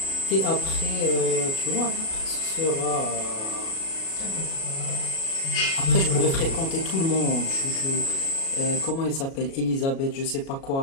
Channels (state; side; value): late; right; 37 ms